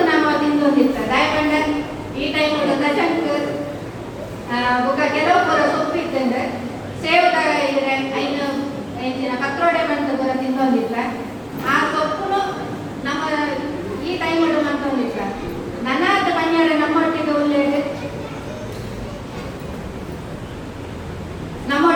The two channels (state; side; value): identical; both; correlation 1.00